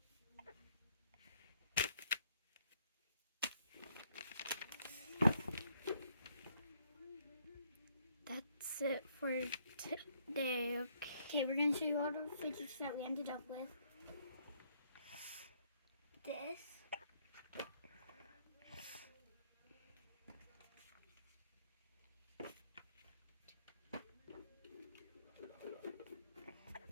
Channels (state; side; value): inverted; both; correlation -0.70